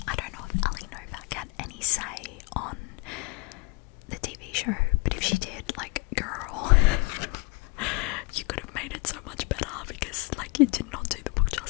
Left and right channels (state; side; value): quieter; right; 27.6 dB